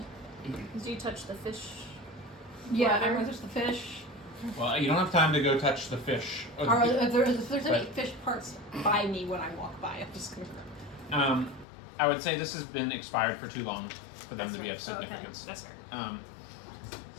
Did you touch the fish? Yeah, Water? I'm gonna touch the fish. Well, you don't have time to go touch the fish. Or if there's any But- fish parts by me when I walk by, I'm just gonna. I would say this has been expired for too long for them That's to be right. of Oh, okay. significance. That's fair.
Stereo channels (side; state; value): right; drops out; at 11.7 s